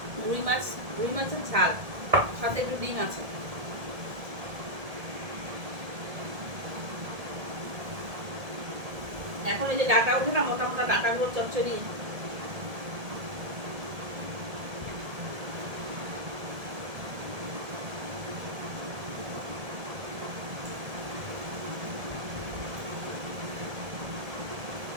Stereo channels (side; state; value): left; late; 1.7 ms